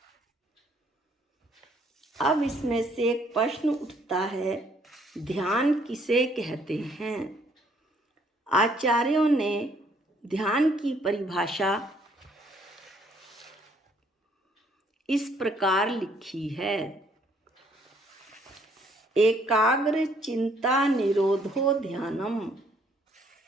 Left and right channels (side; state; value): both; normal; correlation 0.65